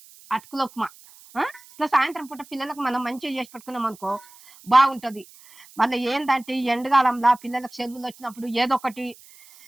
అటుకుల ఉప్మా. ఇట్లా సాయంత్రం పూట పిల్లలకు మనం మంచిగా చేసి పెట్టుకున్నాం అనుకో బాగుంటది. మళ్ళీ ఏందంటే ఈ ఎండకాలంలో పిల్లలకు సెలవులు వచ్చినప్పుడు ఏదో ఒకటి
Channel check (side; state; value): right; noise; hiss, 23 dB below the sound